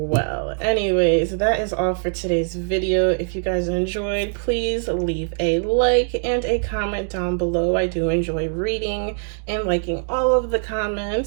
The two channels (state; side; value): silent; left; digital silence